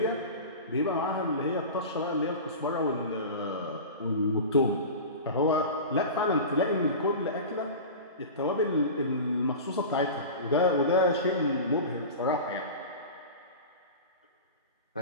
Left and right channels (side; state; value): both; inverted; correlation -0.31